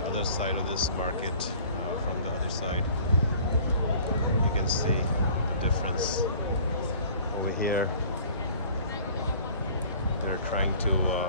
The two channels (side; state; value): both; inverted; correlation -0.49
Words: other side of this market. From the other side, you can see the difference. Over here, they're trying to